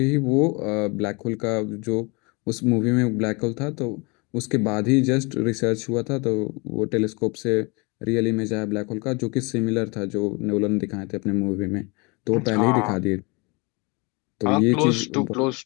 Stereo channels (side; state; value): right; quieter; 28.6 dB